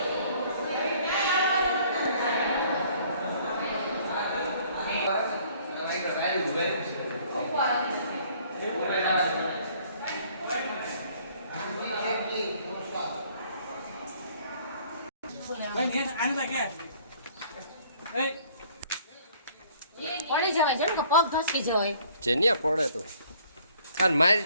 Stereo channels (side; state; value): both; inverted; correlation -0.58